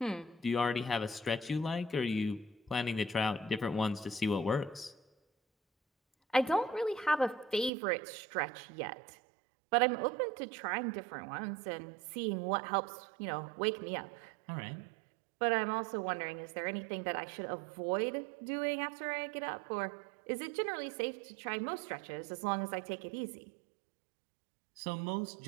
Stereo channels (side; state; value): left; drops out; at 7.7 s